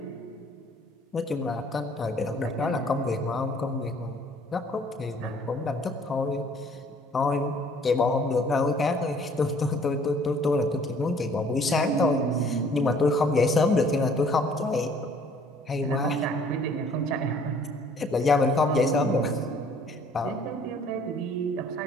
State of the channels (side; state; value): both; normal; correlation 0.57